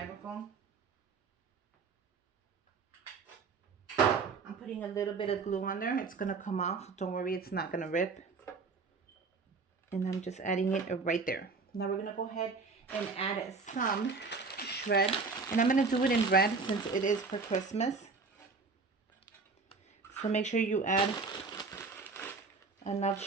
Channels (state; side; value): quieter; left; 4.4 dB